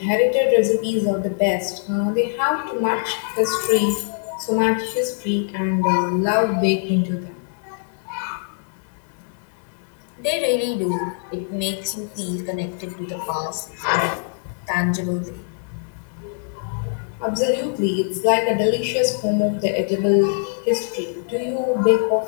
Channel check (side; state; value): right; silent; digital silence